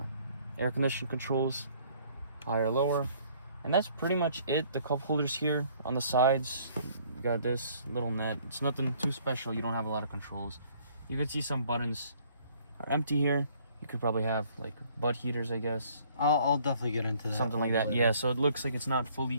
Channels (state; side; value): inverted; both; correlation -0.60